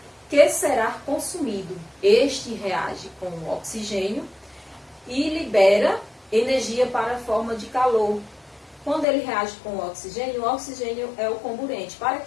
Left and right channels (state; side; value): drops out; right; at 9.1 s